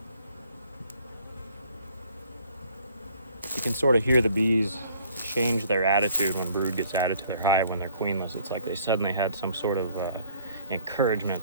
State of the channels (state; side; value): inverted; both; correlation -0.59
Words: You can sort of hear the bees change their attitude when brood gets added to their hive when they're queenless. It's like they suddenly had some sort of encouragement